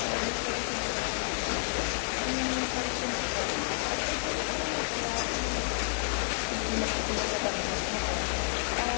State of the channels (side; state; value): right; silent; 58 dB below the other